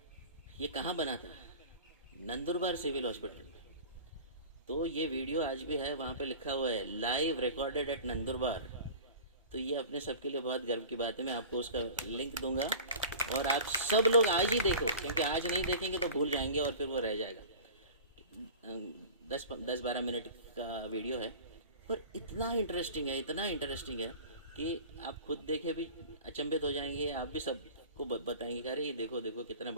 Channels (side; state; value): both; inverted; correlation -0.39